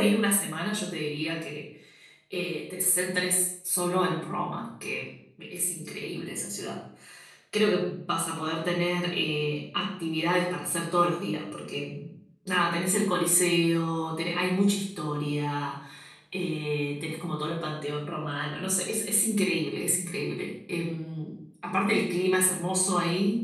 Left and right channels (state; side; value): identical; both; correlation 1.00